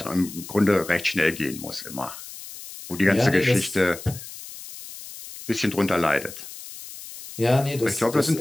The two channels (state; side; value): noise; left; hiss, 14 dB below the sound